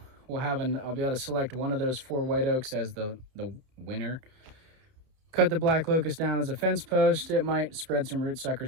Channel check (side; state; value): left; late; 31 ms